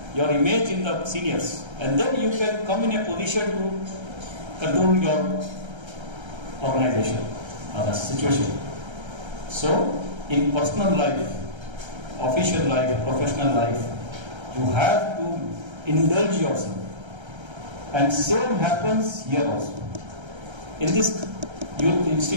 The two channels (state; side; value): late; left; 1.3 ms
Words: Your image in the seniors. And then you can come in a position to control your organization or the situation. So, in personal life, official life, professional life, you have to indulge yourself. And same happens here also. In this